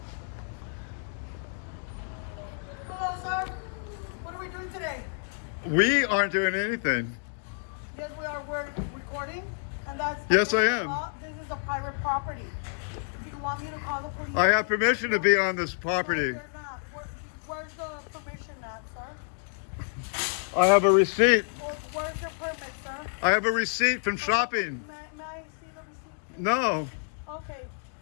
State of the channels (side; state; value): right; silent; digital silence